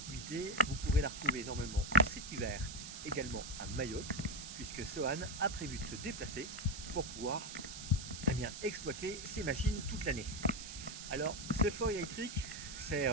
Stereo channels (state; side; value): noise; right; hiss, 10 dB below the sound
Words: vous pourrez la retrouver normalement cet hiver, également à Mayotte, puisque Sohan a prévu de se déplacer pour pouvoir exploiter ces machines toute l'année. Alors, ce foil électrique, c'est